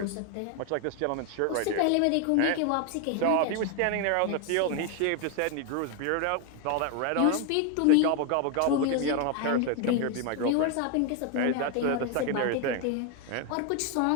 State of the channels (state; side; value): different; both; correlation 0.01